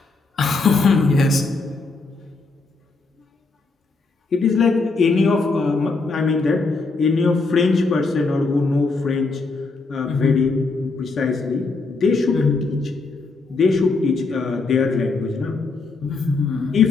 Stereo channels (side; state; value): right; quieter; 3.8 dB